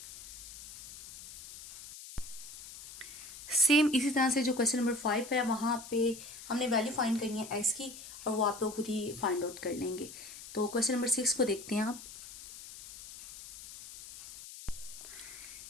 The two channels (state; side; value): noise; left; hiss, 14 dB below the sound